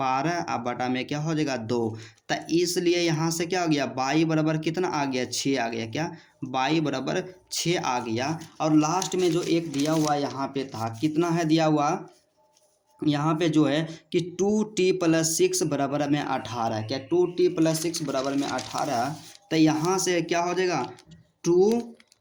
अब बटा में क्या हो जाएगा 2, तो इसलिए यहाँ से क्या हो गया y बराबर कितना आ गया 6 आ गया, क्या y बराबर 6 आ गया। और लास्ट में जो एक दिया हुआ यहाँ पे था कितना है दिया हुआ यहाँ पे जो है कि 2t + 6 बराबर में 18, क्या 2t + 6 बराबर में 18, तो यहाँ से क्या हो जाएगा 2t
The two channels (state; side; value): identical; both; correlation 1.00